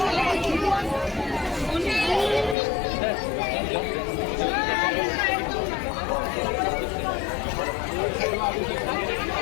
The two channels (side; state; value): right; drops out; at 2.6 s